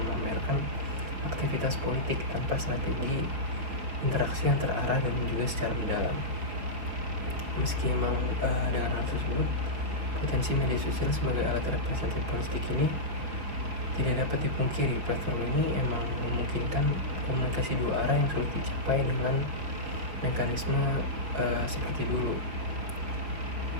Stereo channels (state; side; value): late; left; 5.4 ms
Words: aktivitas politik tanpa strategi interaksi yang terarah dan juga secara mendalam. Meski emang dengan hal tersebut, potensi media sosial sebagai alat representatif politik ini tidak dapat dipungkiri. Platform ini emang memungkinkan komunikasi dua arah yang sulit dicapai dengan mekanisme seperti dulu.